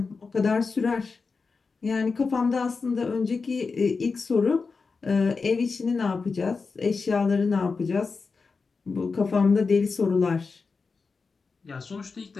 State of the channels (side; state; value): right; quieter; 4.6 dB